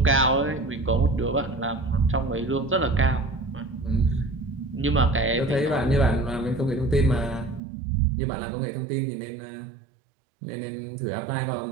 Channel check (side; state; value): left; drops out; at 7.6 s